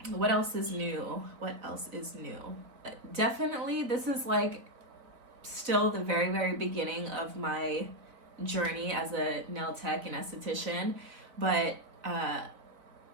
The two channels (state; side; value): late; left; 4.0 ms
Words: What else is new? Definitely this is like still the very beginning of my journey as a nail tech and esthetician, but